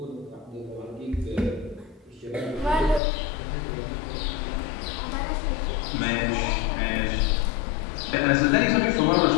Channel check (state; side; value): drops out; right; at 3.0 s